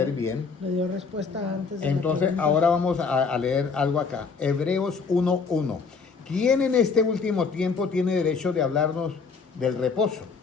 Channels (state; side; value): quieter; right; 5.0 dB